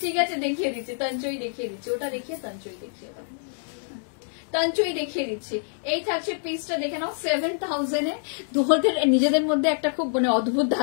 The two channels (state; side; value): silent; right; digital silence